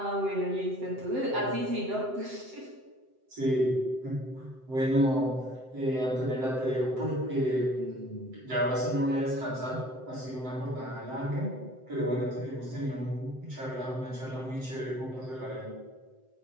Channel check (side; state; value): left; late; 7.8 ms